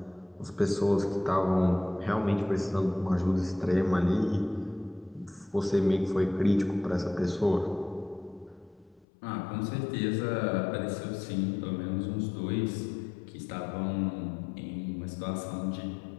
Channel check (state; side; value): drops out; right; at 9.1 s